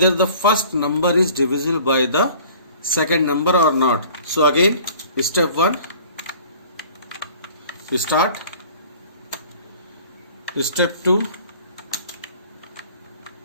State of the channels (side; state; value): both; inverted; correlation -0.49